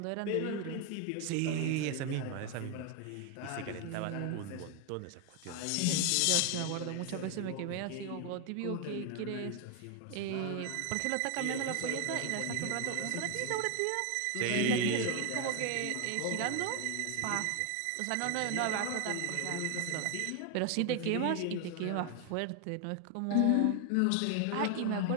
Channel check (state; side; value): different; both; correlation 0.01